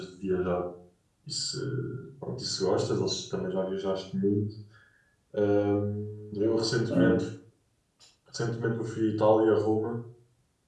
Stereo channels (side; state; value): both; identical; correlation 1.00